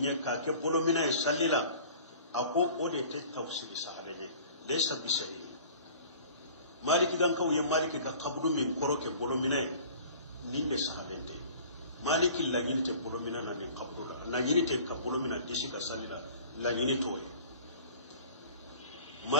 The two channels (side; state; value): both; inverted; correlation -0.46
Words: ka ke bolo mina e sallila ako ode te tafsiri sahalenye laysa bisari maliki gan kaw ye maliki ka kabudu min koroke bolo mina ninde sahalente maliki la nyinte bolo mina na ni kabudu la nyinte ka bolo mina disi ka salila la nyinte toy